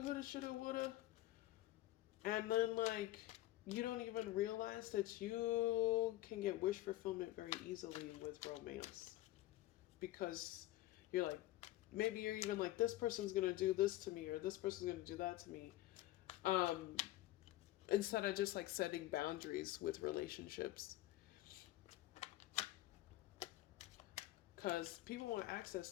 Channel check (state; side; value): quieter; right; 16.1 dB